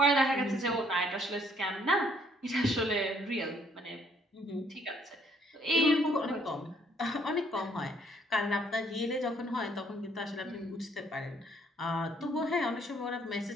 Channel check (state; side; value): normal; both; correlation 0.65